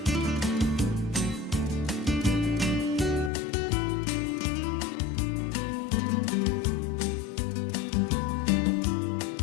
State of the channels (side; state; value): right; drops out; at 3.3 s